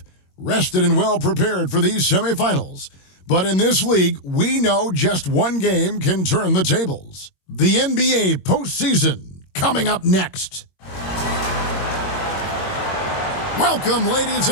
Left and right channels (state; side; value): late; right; 22 ms